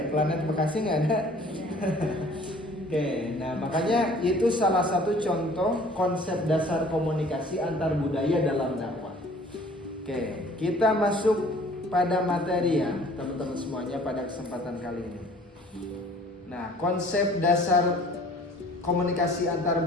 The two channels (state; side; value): normal; both; correlation 0.52